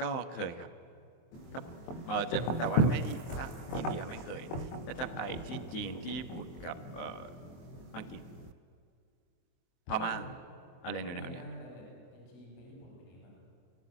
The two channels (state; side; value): late; right; 24 ms